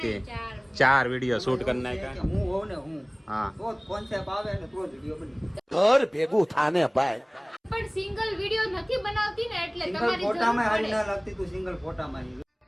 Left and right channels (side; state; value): both; identical; correlation 1.00